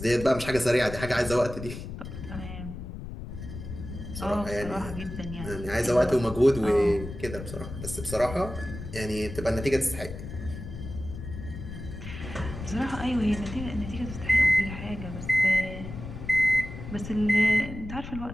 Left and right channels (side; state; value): left; noise; rumble, 9 dB below the sound